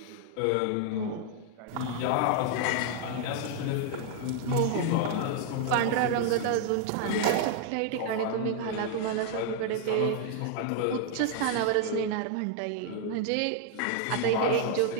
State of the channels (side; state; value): both; different; correlation 0.00